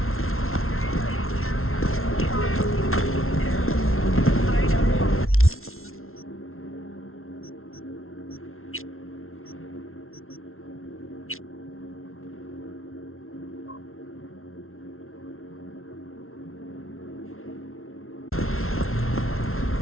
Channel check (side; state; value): right; late; 0.62 ms